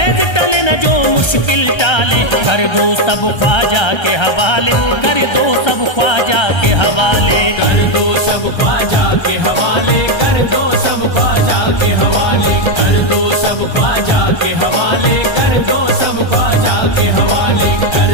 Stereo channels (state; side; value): late; right; 1.3 ms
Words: टले न जो मुश्किल टाले। कर दो सब ख्वाजा के हवाले, कर दो सब ख्वाजा के हवाले। कर दो सब ख्वाजा के हवाले, कर दो सब ख्वाजा के हवाले, कर दो सब ख्वाजा के हवाले, कर दो सब ख्वाजा के हवाले,